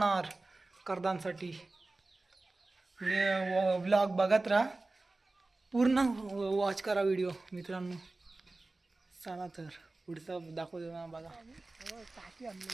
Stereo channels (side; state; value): left; quieter; 3.2 dB